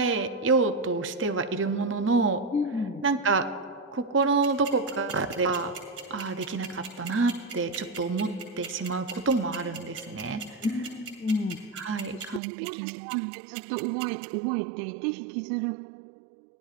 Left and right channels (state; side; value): drops out; left; at 12.4 s